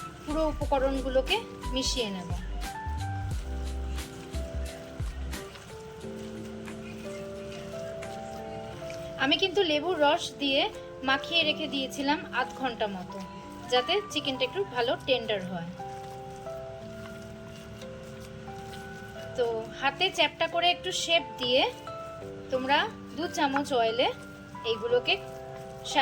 পুরো উপকরণগুলোকে মিশিয়ে নেব। আমি কিন্তু লেবুর রস দিয়ে মাখিয়ে রেখে দিয়েছিলাম আধ ঘন্টা মতো, যাতে চিকেনটা একটু ভালো টেন্ডার হয়। তো হাতে চ্যাপটা করে একটু শেপ দিয়ে তোমরা 2 চামচ অয়েলে এইগুলোকে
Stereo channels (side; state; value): both; identical; correlation 1.00